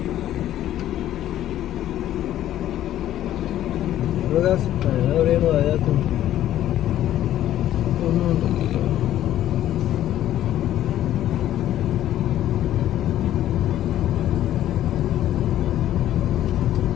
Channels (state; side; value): quieter; right; 12.5 dB